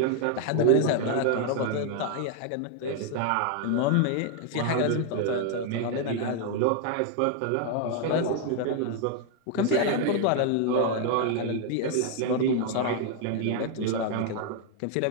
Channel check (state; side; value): different; both; correlation 0.00